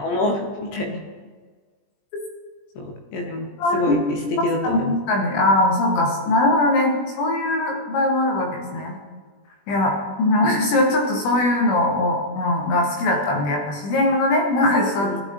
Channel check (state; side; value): late; right; 20 ms